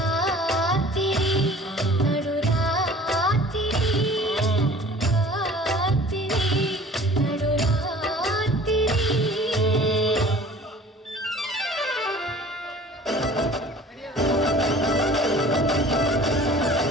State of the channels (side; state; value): both; normal; correlation 0.46